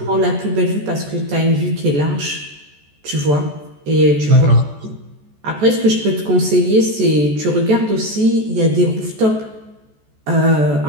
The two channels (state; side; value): late; left; 14 ms